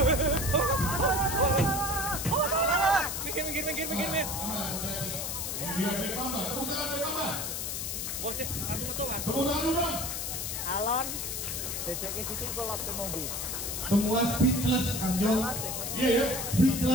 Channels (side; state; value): left; noise; hiss, 3 dB below the sound